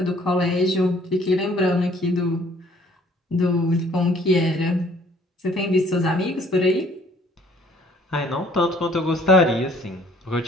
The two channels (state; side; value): normal; both; correlation 0.59